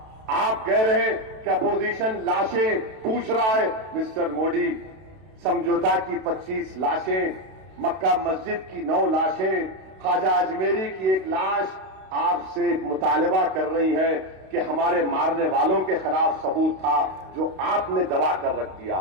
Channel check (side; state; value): left; late; 32 ms